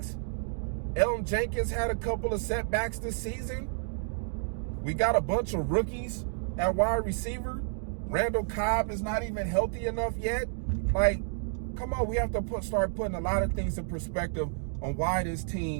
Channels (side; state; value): left; silent; digital silence